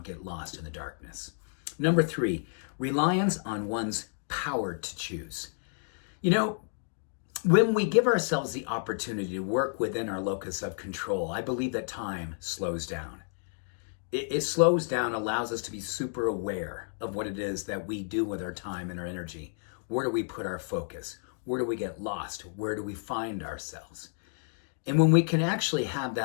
get lost in the darkness. Number 3, reliance on one's power to choose. You know, when we give ourselves the opportunity to work within our locus of control, I believe that time slows down. It slows down, allows us to be super aware of what it is that we do with our time and our energy. Where do we put our focus? Where do we get lost? Where do we find ourselves? And when we can actually have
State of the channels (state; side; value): silent; right; digital silence